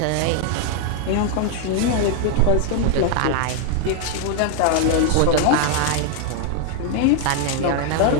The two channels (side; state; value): both; different; correlation 0.00